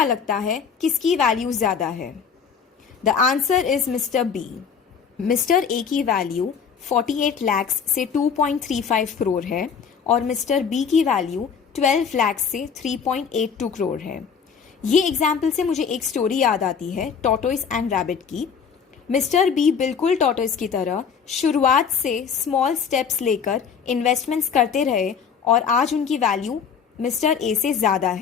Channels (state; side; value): quieter; right; 6.6 dB